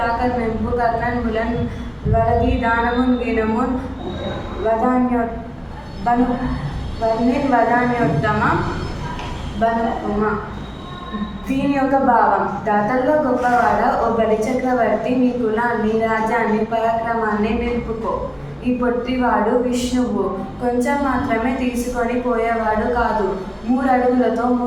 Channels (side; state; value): both; identical; correlation 1.00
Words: మెంపు కర్ణన్ ములన్ వలగి దానమున్ గీనమున్ వదాన్యోత్తమ బనుమ. దీని యొక్క భావం: దాతల్లో గొప్పవాడ ఓ బలి చక్రవర్తి, నీ కులాన్ని రాజ్యాన్ని పరాక్రమాన్ని నిలుపుకో. ఈ పొట్టివాడు విష్ణువు కొంచెం మాత్రమే తీసుకొని పోయేవాడు కాదు, 3 అడుగులతో